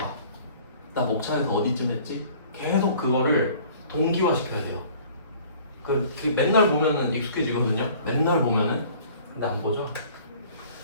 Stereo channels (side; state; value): both; inverted; correlation -0.51